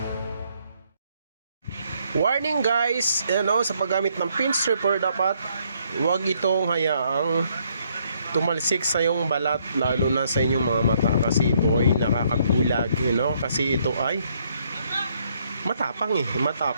warning guys, ano, sa paggamit ng pin stripper dapat huwag itong hayaang tumalsik sa iyong balat, lalo na sa inyong mga mata, kasi ito ay nakakagulag, kasi ito ay matapang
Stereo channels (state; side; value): inverted; both; correlation -0.70